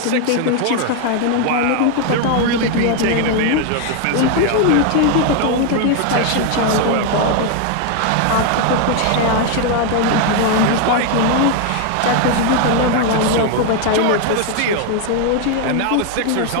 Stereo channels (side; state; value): both; different; correlation 0.01